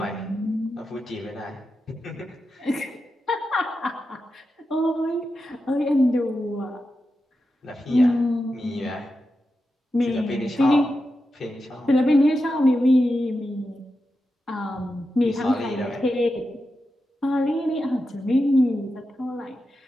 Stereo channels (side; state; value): both; normal; correlation 0.89